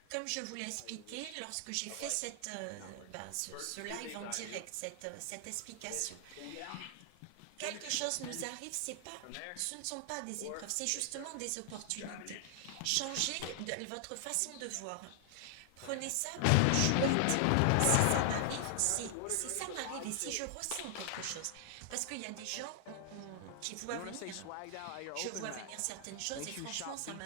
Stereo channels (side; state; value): both; different; correlation 0.00